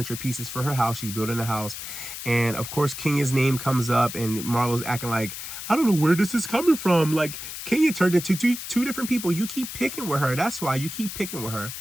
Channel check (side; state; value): left; noise; hiss, 9 dB below the sound